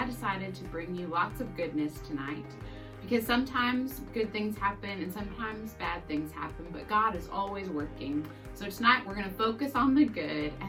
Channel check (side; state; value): both; identical; correlation 1.00